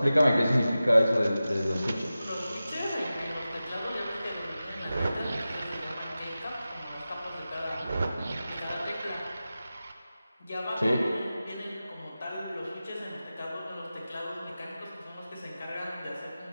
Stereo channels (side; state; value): both; inverted; correlation -0.94